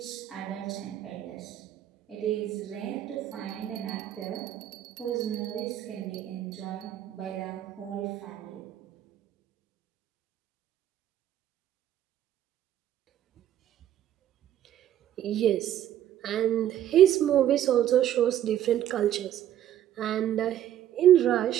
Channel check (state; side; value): quieter; left; 11.5 dB